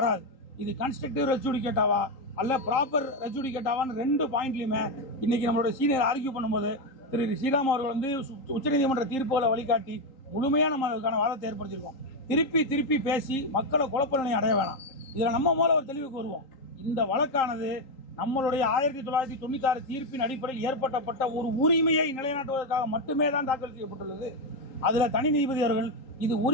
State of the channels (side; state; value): right; late; 3.8 ms